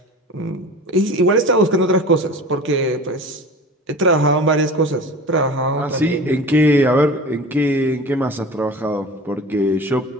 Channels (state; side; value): normal; both; correlation 0.36